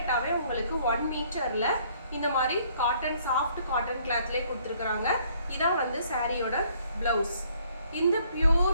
உங்களுக்கு 1 மீட்டர்ல இந்த மாதிரி காட்டன் சாஃப்ட் காட்டன் கிளாத்லேயே கொடுத்துருக்குறாங்க. இதான் வந்து சாரியோட பிளவுஸ். இந்த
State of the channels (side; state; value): both; inverted; correlation -0.63